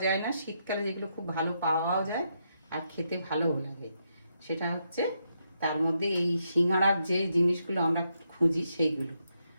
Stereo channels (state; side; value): inverted; both; correlation -0.80